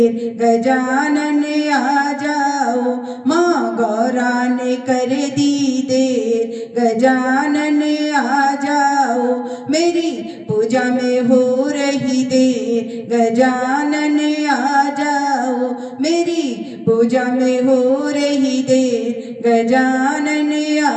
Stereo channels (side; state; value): both; identical; correlation 1.00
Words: गजानन आ जाओ। माँ गौरा ने कर दी देर, गजानन आ जाओ। मेरी पूजा में हो रही देर, गजानन आ जाओ। मेरी पूजा में हो रही देर, गजानन